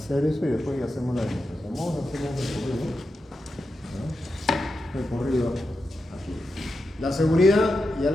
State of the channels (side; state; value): both; normal; correlation 0.88